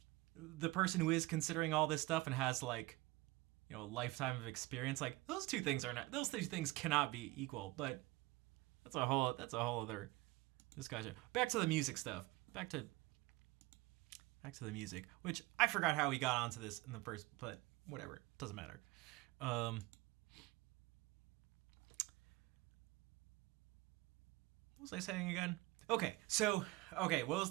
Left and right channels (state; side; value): quieter; left; 21.2 dB